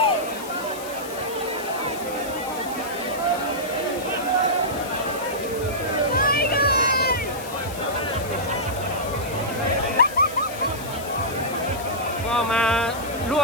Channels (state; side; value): noise; left; hiss, 14 dB below the sound